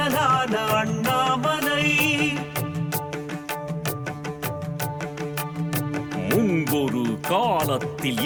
அண்ணாமலை முன்பொரு காலத்தில்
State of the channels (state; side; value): identical; both; correlation 1.00